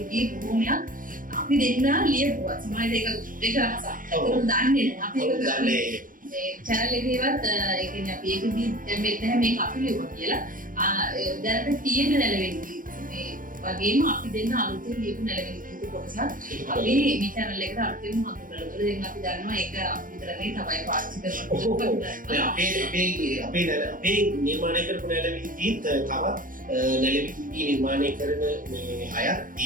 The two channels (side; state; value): left; late; 0.40 ms